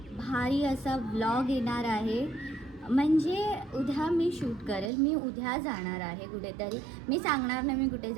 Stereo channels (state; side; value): drops out; left; at 4.9 s